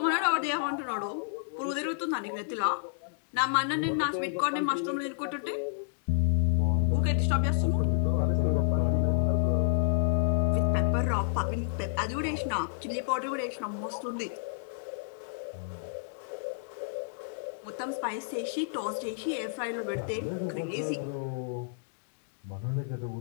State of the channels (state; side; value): silent; right; digital silence